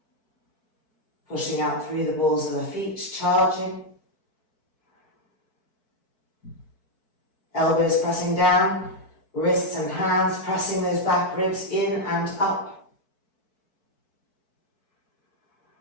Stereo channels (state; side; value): late; right; 4.6 ms